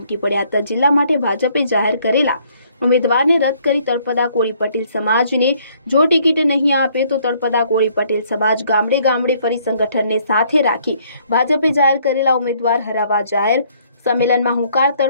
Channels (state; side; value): inverted; both; correlation -0.64